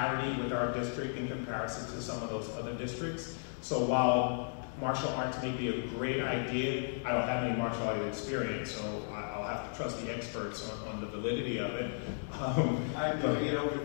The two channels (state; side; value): silent; right; digital silence